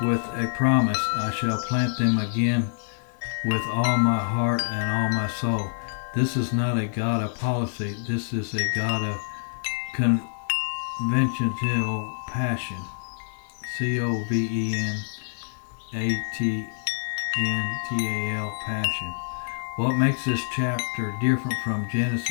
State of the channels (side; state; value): right; silent; 61 dB below the other